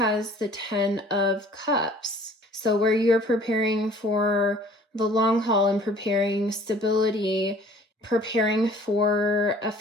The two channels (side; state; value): both; normal; correlation 0.51